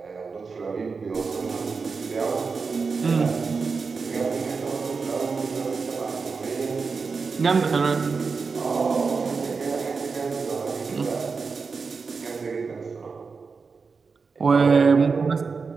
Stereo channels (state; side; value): quieter; left; 4.8 dB